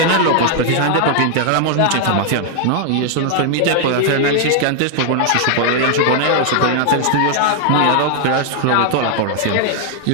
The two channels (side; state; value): both; different; correlation 0.00